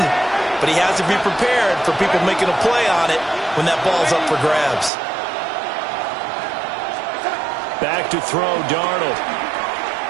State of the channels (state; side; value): drops out; left; at 4.9 s